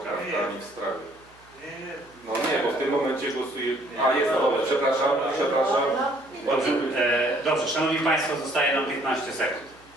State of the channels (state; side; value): noise; right; hum, 29 dB below the sound